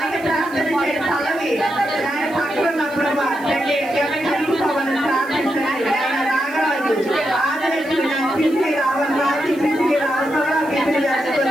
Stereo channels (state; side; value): noise; right; hiss, 23 dB below the sound